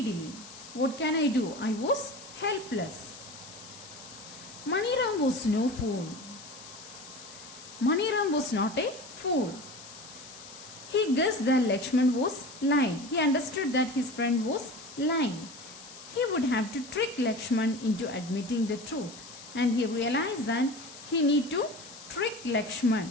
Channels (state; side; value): noise; left; hiss, 16 dB below the sound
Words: What can I do? I was helpless. Maniram was no fool. Maniram was not a fool. He guessed that Lakshman was lying. He understood that his friend was lying. He would have to trick Lakshman into admitting the truth. And he realized that he need to trick Lakshman.